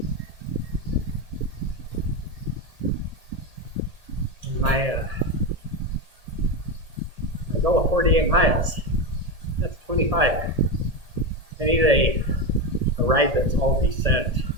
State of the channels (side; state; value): left; late; 1.7 ms